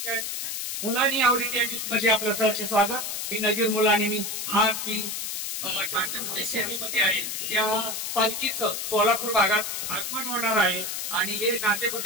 मुलानी ऑल इंडिया न्यूज मध्ये आपलं सहर्ष स्वागत। मी नजीर मुलानी। मी शहरामध्ये आहे, त्या पालखीचं सोलापूर भागात आगमन होणार आहे आणि हे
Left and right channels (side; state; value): left; noise; hiss, 4 dB below the sound